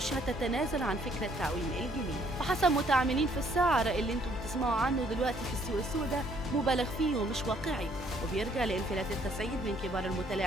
هتتنازل عن فكرة تعويم الجنيه. وحسب متعاملين في السعر اللي انتم بتسمعوا عنه دلوقتي في السوق السوداء مبالغ فيه ومش واقعي، وبيرجع لانفلات التسعير من كبار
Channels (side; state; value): both; normal; correlation 0.65